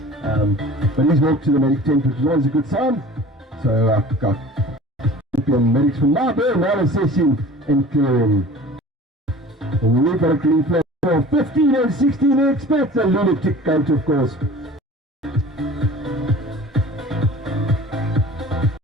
But he's walked to the medic tent, which is always a good sign. So I've got champion medics from Marburg now assessing and clearing. And we've got a green flag for 15 and 16 experts. A lunatic gate, of course.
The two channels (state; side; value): normal; both; correlation 0.43